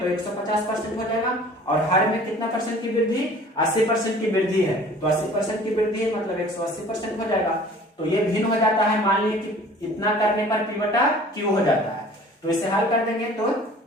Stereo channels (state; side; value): normal; both; correlation 0.48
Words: 150% हो जाएगा। और हर में कितना परसेंट की वृद्धि 80% की वृद्धि है, तो 80% की वृद्धि है मतलब 180% हो जाएगा। तो ये भिन्न हो जाता है मान लीजिए कि इतना करने पर p/q हो जाता है। तो इसे हल कर देंगे तो